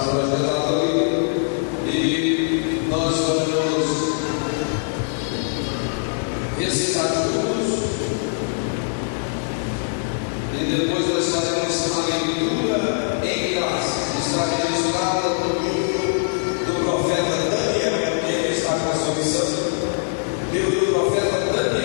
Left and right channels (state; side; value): silent; right; digital silence